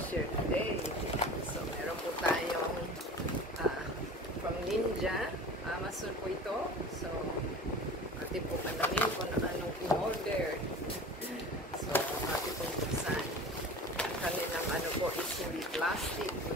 share today. So meron po tayong from Ninja, Amazon po ito. So atin po kanangin kung anong in-order. So atin po buksan. Kanilang ano po is hindi plastic,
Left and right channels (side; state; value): both; normal; correlation 0.37